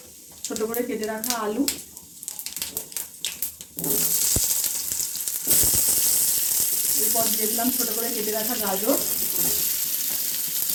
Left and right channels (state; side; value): identical; both; correlation 1.00